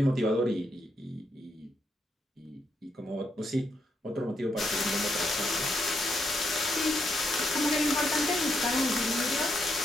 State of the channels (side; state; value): both; normal; correlation 0.79